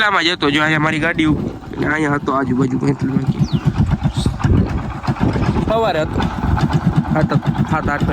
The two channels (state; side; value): identical; both; correlation 1.00